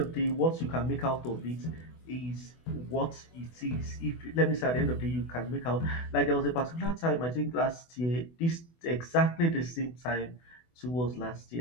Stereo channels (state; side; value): late; right; 24 ms